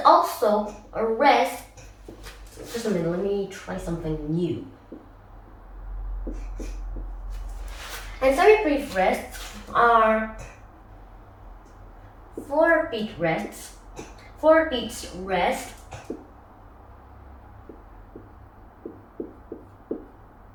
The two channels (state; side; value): identical; both; correlation 1.00